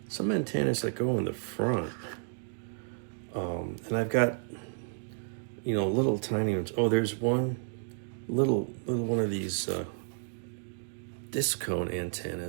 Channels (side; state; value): left; silent; digital silence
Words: antennas that go in the front, and I've got little tiny ones. Oh, there's one little one of these disc cone